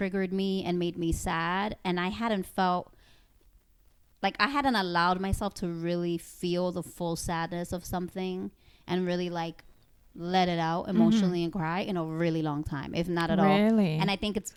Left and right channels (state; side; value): identical; both; correlation 1.00